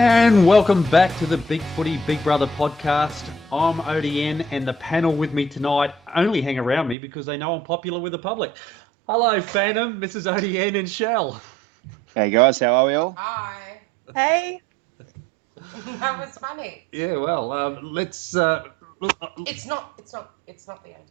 welcome back to the BigFooty BigBrother podcast. I'm ODN, and the panel with me tonight only hang around me because they know I'm popular with the public. Hello, Phantom, Mrs. ODN, and Shell. Hey guys, how are we all? Hi. Hey. That was funny. Yeah, well, let's. It's not the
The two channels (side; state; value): left; drops out; at 7.0 s